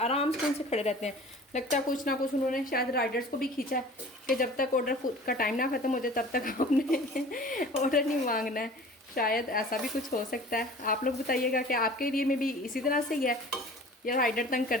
से उनसे खड़े रहते हैं। लगता है कुछ ना कुछ उन्होंने शायद राइडर्स को भी खींचा है कि जब तक ऑर्डर का टाइम ना ख़त्म हो जाए तब तक आपने ऑर्डर नहीं मांगना है। शायद ऐसा भी कुछ हो सकता है। आप लोग बताइएगा कि आपके एरिए में भी इसी तरह से ही है या राइडर तंग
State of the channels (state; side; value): normal; both; correlation 0.44